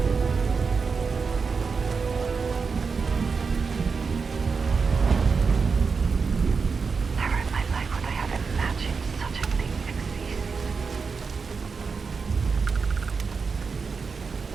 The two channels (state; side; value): quieter; left; 5.1 dB